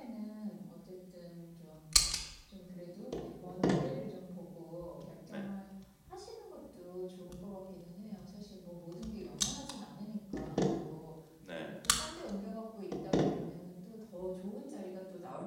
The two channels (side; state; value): both; identical; correlation 1.00